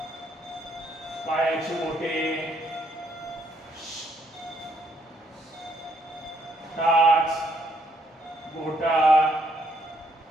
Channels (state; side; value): normal; both; correlation 0.71